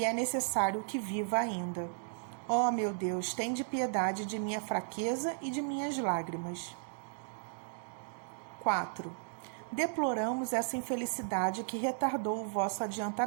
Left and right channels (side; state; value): left; silent; digital silence